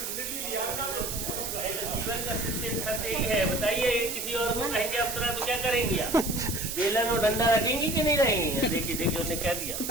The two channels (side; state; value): right; noise; hiss, 4 dB below the sound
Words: जीवन का सत्य यही है। बताइए किसी और को कहेंगे अप्सरा तो क्या करेंगी आप? बेलन और डंडा रखेंगी कि नहीं रहेंगी? देखिए देखिए उन्हें कह दिया।